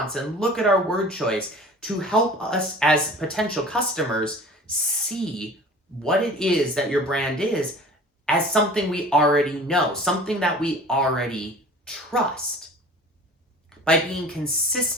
and look at our word choice to help us as potential customers see what it is that your brand is as something we already know, something that we already trust. By being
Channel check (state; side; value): normal; both; correlation 0.43